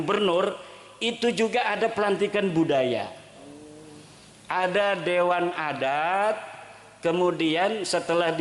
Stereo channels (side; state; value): both; identical; correlation 1.00